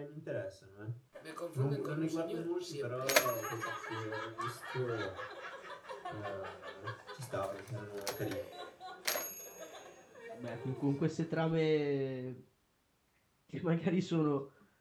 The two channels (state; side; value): identical; both; correlation 1.00